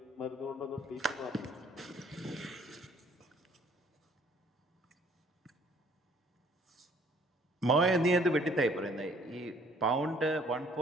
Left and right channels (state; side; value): normal; both; correlation 0.60